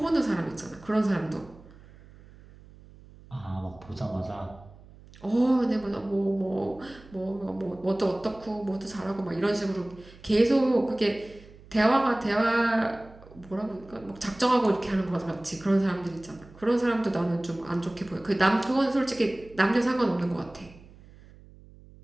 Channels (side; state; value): right; noise; hum, 22 dB below the sound